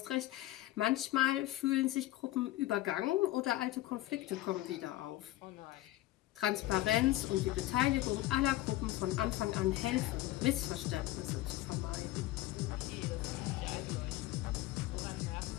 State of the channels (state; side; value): quieter; right; 16.0 dB